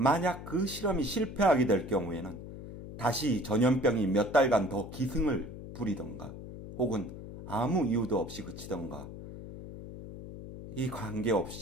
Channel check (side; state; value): left; noise; hum, 12 dB below the sound